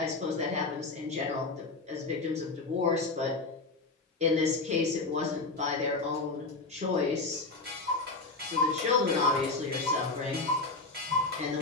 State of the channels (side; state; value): right; quieter; 3.5 dB